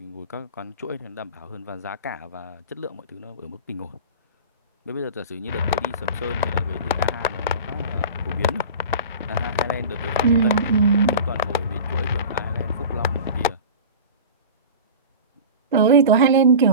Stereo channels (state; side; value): inverted; both; correlation -0.33